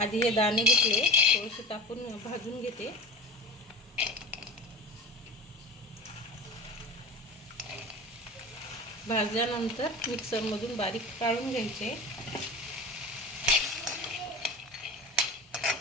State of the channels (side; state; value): both; normal; correlation 0.34